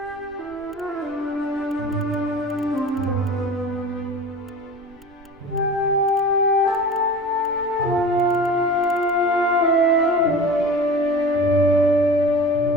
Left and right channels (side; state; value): right; noise; rumble, 26 dB below the sound